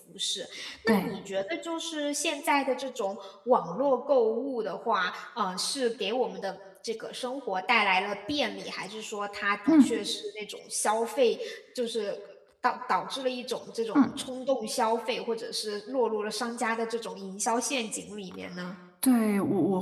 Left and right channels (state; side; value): identical; both; correlation 1.00